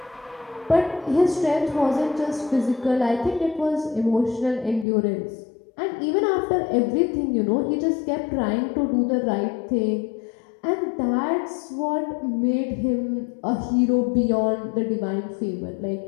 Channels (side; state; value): right; drops out; at 4.9 s